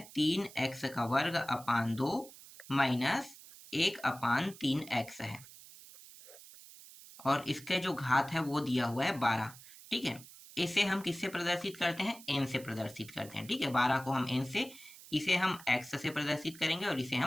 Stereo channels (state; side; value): noise; right; hiss, 18 dB below the sound